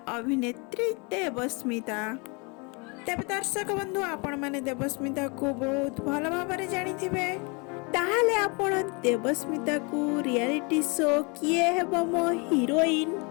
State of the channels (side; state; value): right; quieter; 31.2 dB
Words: अभिनेत्री देवस्मिता। तेरे दर्शक बंधु आपण माने देवस्मिता को बहुत भल भाव जानिथिबे। ताहाले आपण देवस्मिता को रियलिटी शो किए हेबो मो हीरोइन